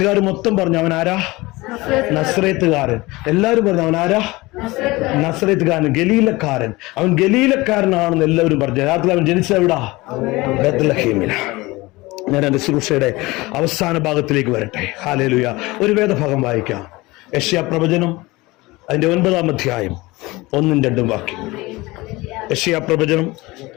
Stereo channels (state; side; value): quieter; right; 21.5 dB